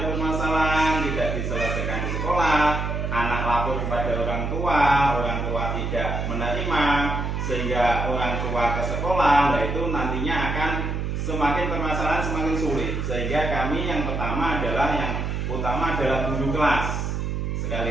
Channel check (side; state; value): right; noise; hum, 2 dB below the sound